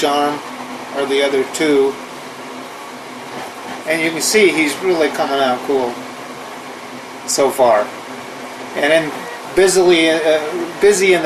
arm are the other 2. And you can see he's really coming out cool so far. And then busy in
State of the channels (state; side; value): identical; both; correlation 1.00